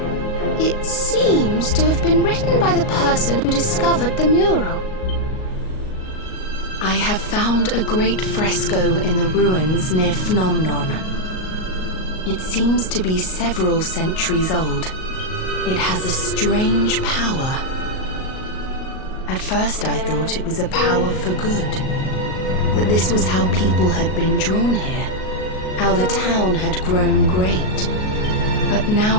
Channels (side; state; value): right; late; 38 ms